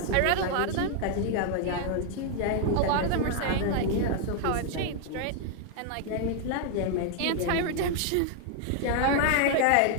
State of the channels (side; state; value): both; different; correlation 0.00